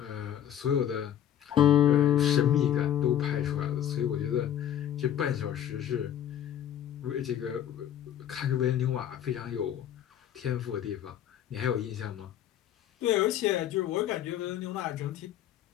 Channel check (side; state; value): right; quieter; 10.5 dB